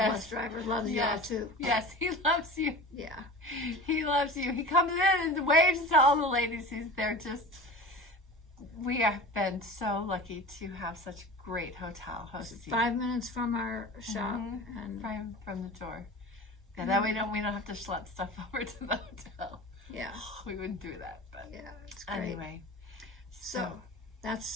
bus driver, loves y'all too. Yes, he loves you. Yeah. He loves you. He comes in and waves to all the ladies. We have been so lucky to have such great hotel hosts. 5 minutes from our shop, and From the door. Yeah, that way we don't have to schlep stuff over to the hotel. yeah, We wouldn't do that, but yeah, it's great. anyway. So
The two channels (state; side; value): normal; both; correlation 0.35